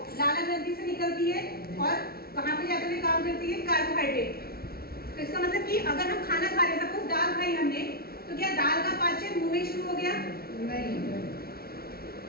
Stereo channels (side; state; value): right; late; 0.44 ms